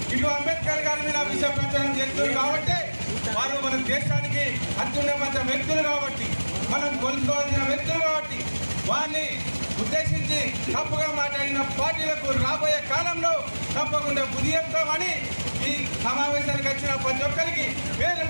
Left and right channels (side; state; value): both; inverted; correlation -1.00